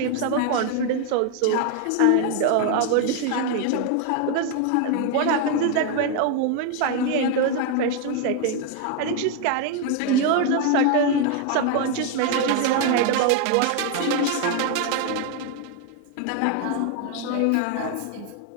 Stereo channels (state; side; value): different; both; correlation 0.01